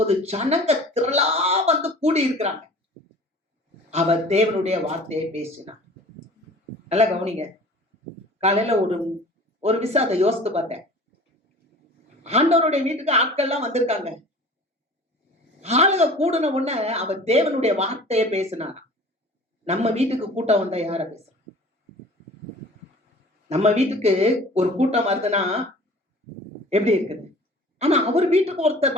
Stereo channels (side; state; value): both; normal; correlation 0.44